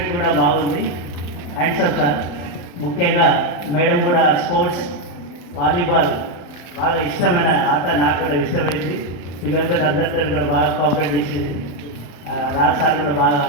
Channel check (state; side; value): late; right; 35 ms